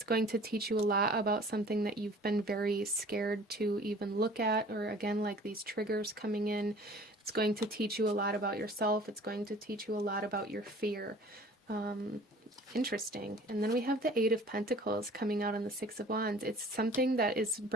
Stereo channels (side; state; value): both; normal; correlation 0.48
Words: going to teach you a lot about something that you've been very scared to even look at, or again, like these triggers coming in. It's going to teach you a lot about yourself. It's going to teach you a lot about your fear. Interesting. And then we have the Eight of Pentacles coming out on the Six of Wands. It's something that is